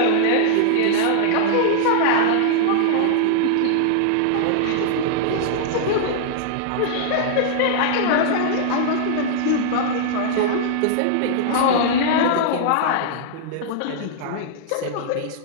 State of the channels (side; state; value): both; different; correlation -0.01